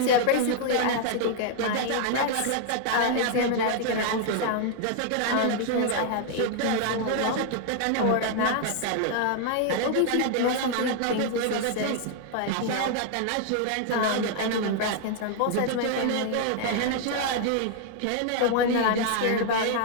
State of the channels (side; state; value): both; different; correlation 0.00